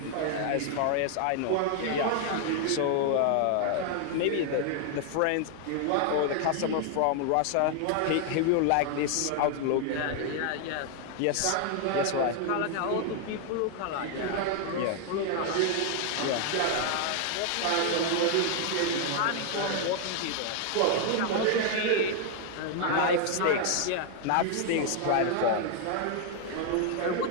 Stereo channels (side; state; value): both; different; correlation 0.00